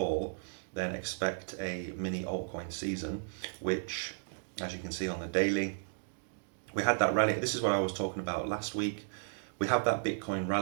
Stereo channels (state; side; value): silent; left; digital silence